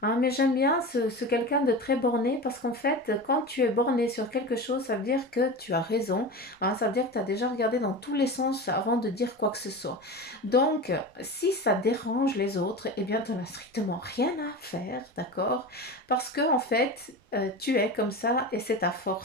hein, mais j'aime bien ce quelqu'un de très borné parce qu'en fait, quand tu es borné sur quelque chose, ça veut dire que tu as raison, hein, ça veut dire que tu as déjà regardé dans tous les sens avant de dire quoi que ce soit. Donc, si ça dérange les autres, eh bien, tu n'en as strictement rien à faire, d'accord? Parce que, en fait, tu es comme ça et c'est ta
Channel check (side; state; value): both; normal; correlation 0.28